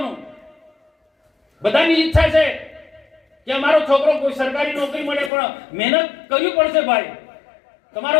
બધાની ઈચ્છા છે કે અમારો છોકરો કોઈ સરકારી નોકરી મળે, પણ મહેનત કરવી પડશે ભાઈ. તમારો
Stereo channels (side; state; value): right; drops out; at 5.3 s